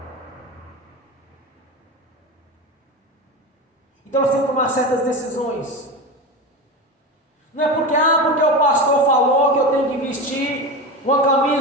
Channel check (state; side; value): normal; both; correlation 0.23